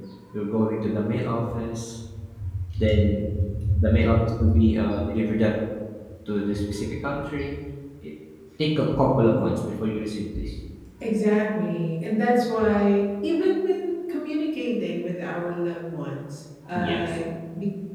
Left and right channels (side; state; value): both; identical; correlation 1.00